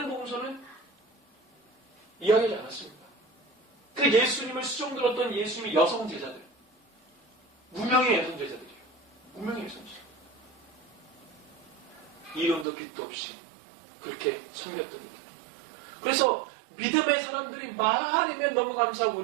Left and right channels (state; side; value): drops out; left; at 12.7 s